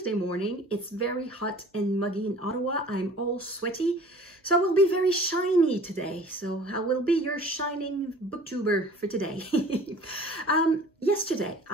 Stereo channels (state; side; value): normal; both; correlation 0.47